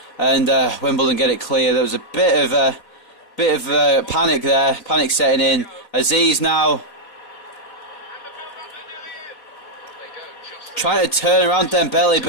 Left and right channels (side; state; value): right; late; 4.2 ms